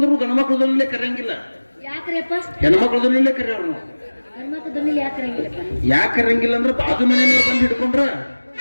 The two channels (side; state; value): both; inverted; correlation -1.00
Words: ಗಣಮಕ್ಳದಲ್ಲೇ ಕರೆಯಂಗಿಲ್ಲ, ಯಾಕ್ರಿ ಅಪ್ಪ? ಹೆಣ್ಮಕ್ಳದಲ್ಲೇ ಕರೆಯೋರು ನಾವು. ಗಂಡ್ಮಕ್ಳ ದೊನ್ನಿಲಿ ಯಾಕೆ ಇರಂಗಿಲ್ಲಪ್ಪ? ಯಾಕೆ ಕರೆಯಂಗಿಲ್ಲ ಅಂದ್ರೆ ಬಾಜು ಮನೆಯವ್ರು ಬಂದು ಹಿಡ್ಕೊಂಡ್ರ